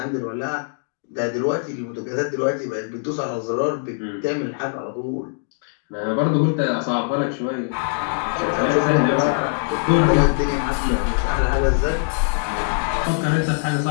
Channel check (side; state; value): right; silent; digital silence